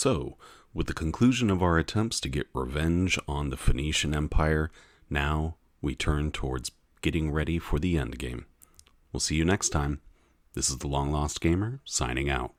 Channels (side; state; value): both; identical; correlation 1.00